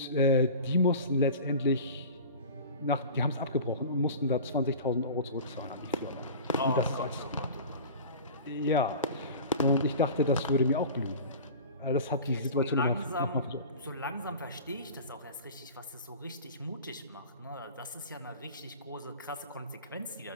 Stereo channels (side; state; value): both; inverted; correlation -0.37